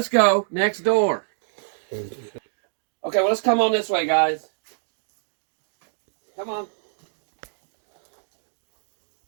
go next door. Okay, well, let's come on this way, guys. Come on.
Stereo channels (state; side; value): silent; left; digital silence